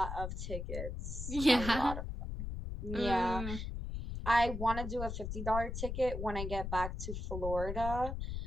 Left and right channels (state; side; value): noise; left; rumble, 5 dB below the sound